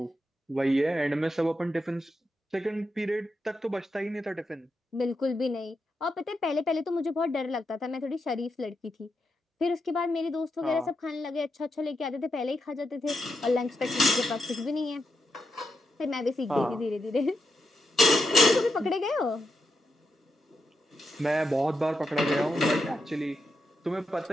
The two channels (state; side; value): normal; both; correlation 0.84